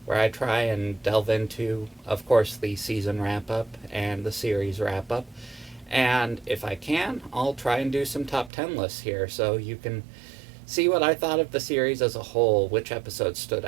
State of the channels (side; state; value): left; drops out; at 8.5 s